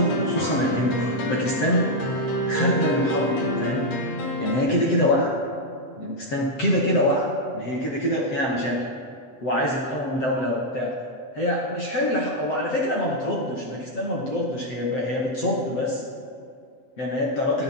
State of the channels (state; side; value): late; right; 7.7 ms